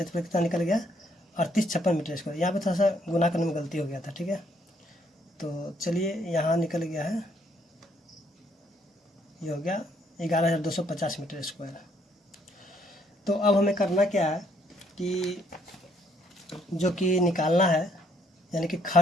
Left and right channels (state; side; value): normal; both; correlation 0.69